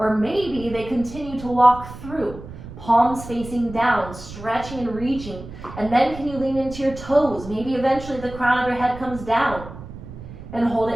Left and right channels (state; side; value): noise; right; rumble, 13 dB below the sound